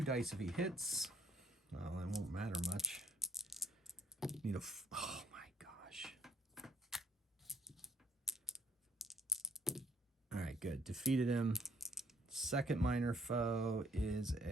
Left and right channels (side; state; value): both; normal; correlation 0.64